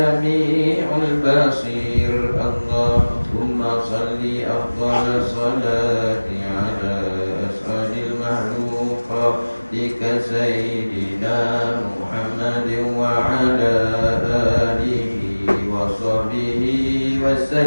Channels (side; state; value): both; inverted; correlation -1.00